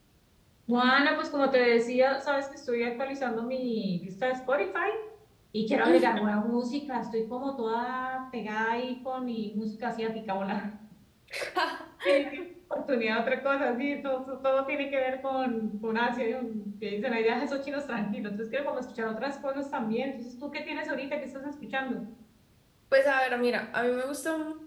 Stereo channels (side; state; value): both; identical; correlation 1.00